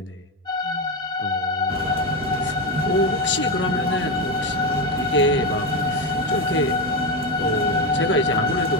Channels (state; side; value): normal; both; correlation 0.12